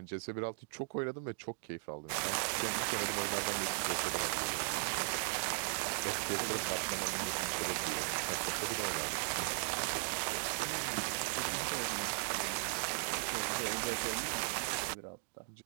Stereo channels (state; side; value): silent; left; digital silence